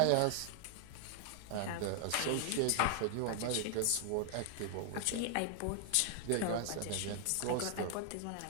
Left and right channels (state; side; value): different; both; correlation 0.00